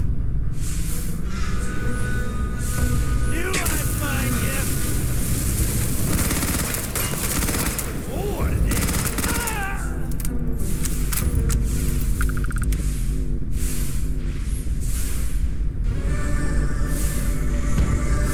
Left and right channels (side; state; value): both; identical; correlation 1.00